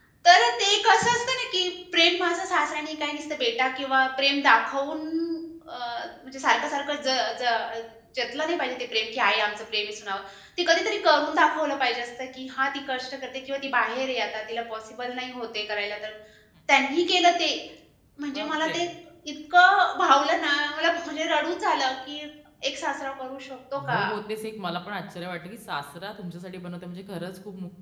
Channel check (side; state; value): both; identical; correlation 1.00